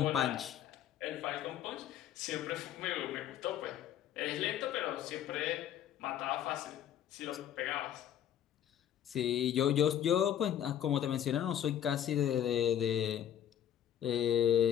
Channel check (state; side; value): quieter; right; 10.3 dB